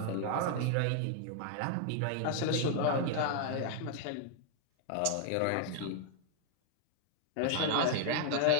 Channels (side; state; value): both; different; correlation 0.00